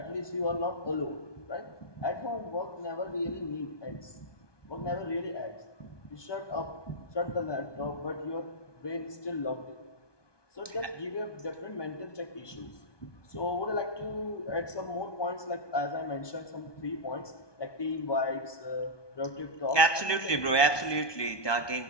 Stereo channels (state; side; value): late; right; 1.2 ms